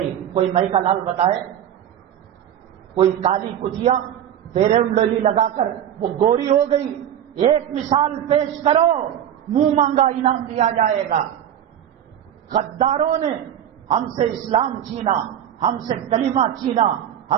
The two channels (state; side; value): quieter; left; 10.3 dB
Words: کوئی مئی کا لال بتائے؟ کوئی کالی کتیا فیئر اینڈ لولی لگا کر وہ گوری ہو گئی، ایک مثال پیش کرو، منہ مانگا انعام دیا جائے گا۔ غداروں نے ہم سے اسلام چھینا، ہم سے کلمہ چھینا،